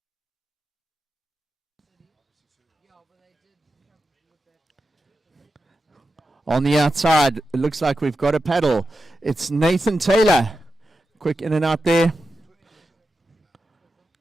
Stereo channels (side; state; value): both; normal; correlation 0.90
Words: On the outside, it looks like we've got a paddle. It's Nathan Taylor. Quick in and out there.